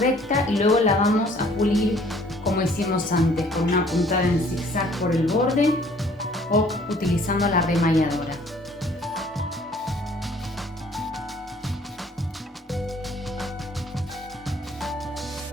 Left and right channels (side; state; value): both; normal; correlation 0.57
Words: y luego la vamos a pulir como hicimos antes, con una puntada en zigzag por el borde o utilizando la remalladora.